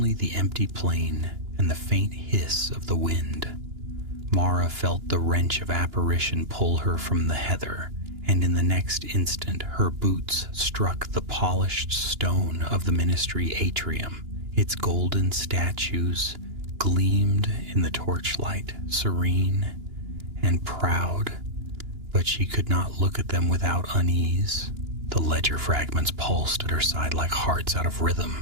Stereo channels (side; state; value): left; late; 2.9 ms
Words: the empty plain and the faint hiss of the wind. Mara felt the wrench of apparition pull her from the heather, and in the next instant her boots struck the polished stone of the ministry atrium. Its golden statues gleamed in the torchlight, serene and proud, but she could not look at them without unease. The ledger fragments pulsed at her side like hearts out of